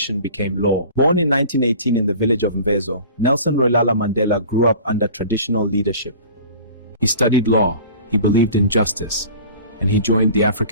became law. Born in 1918 in the village of Mvezo, Nelson Rolihlahla Mandela grew up under traditional leadership. He studied law, he believed in justice, and he joined the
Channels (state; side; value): inverted; both; correlation -0.42